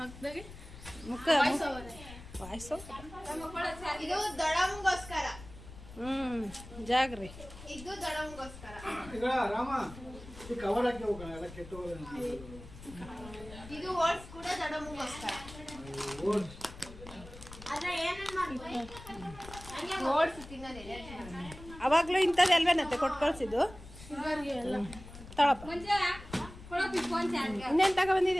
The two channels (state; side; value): noise; left; rumble, 16 dB below the sound